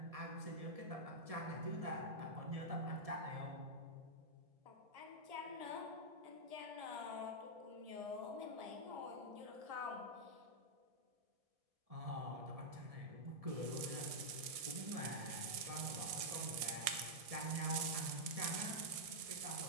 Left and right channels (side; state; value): left; late; 1.6 ms